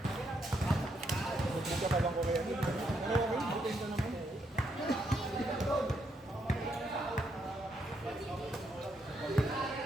Hindi ka pa bang ko kaya? Ano okay? Butin ka naman.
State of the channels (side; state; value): both; normal; correlation 0.77